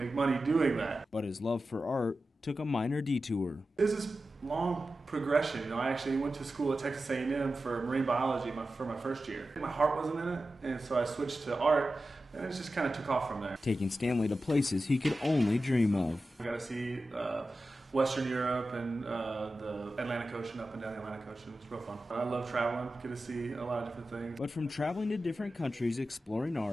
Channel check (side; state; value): both; normal; correlation 0.93